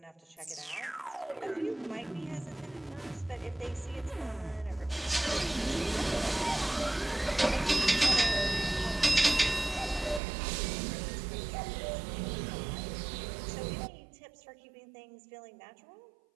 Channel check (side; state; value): left; drops out; at 10.2 s